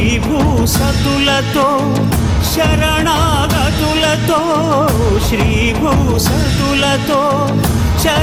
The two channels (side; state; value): both; identical; correlation 1.00